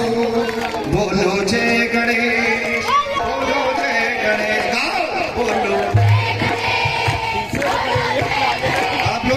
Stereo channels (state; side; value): identical; both; correlation 1.00